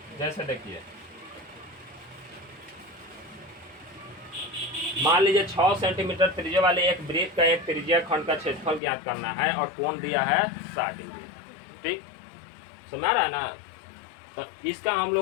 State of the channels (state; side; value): drops out; right; at 8.8 s